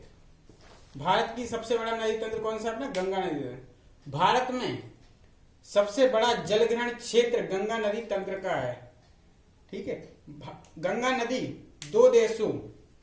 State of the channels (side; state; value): both; identical; correlation 1.00